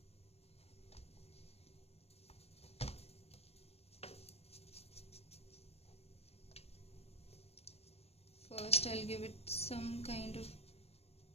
First I'll give it some kind of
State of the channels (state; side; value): late; right; 0.29 ms